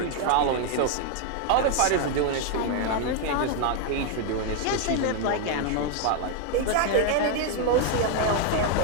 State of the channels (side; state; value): both; different; correlation 0.01